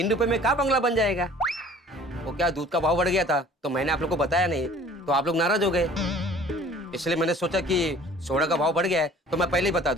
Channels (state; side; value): normal; both; correlation 0.50